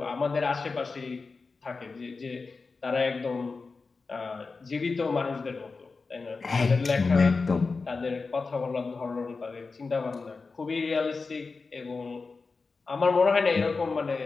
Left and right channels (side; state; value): right; quieter; 4.3 dB